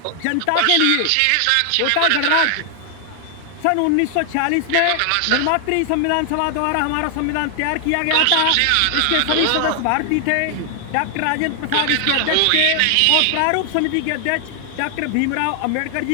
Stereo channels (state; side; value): different; both; correlation 0.00